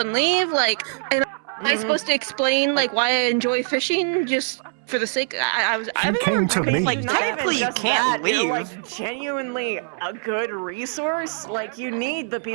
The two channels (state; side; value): silent; left; 63 dB below the other